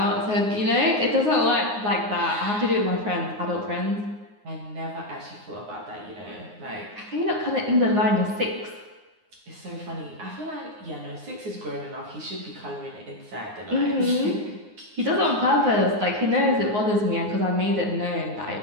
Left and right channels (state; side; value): late; left; 9.6 ms